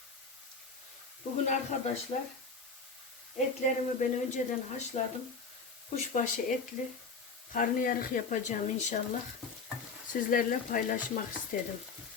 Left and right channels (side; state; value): right; quieter; 4.7 dB